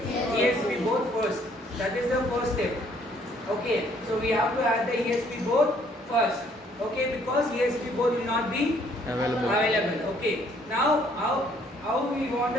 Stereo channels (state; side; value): normal; both; correlation 0.63